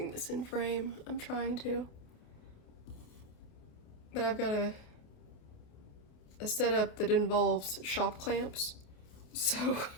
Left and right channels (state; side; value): late; right; 28 ms